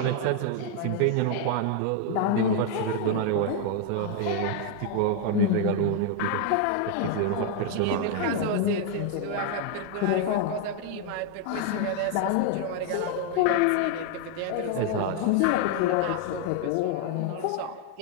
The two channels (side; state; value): both; different; correlation 0.00